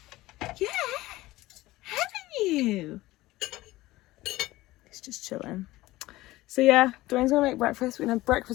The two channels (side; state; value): right; quieter; 17.9 dB